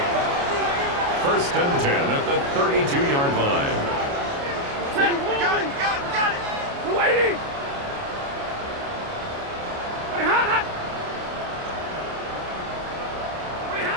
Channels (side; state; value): left; late; 29 ms